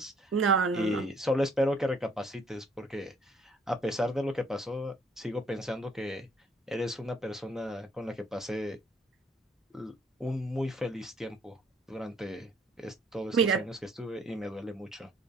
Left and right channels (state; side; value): normal; both; correlation 0.62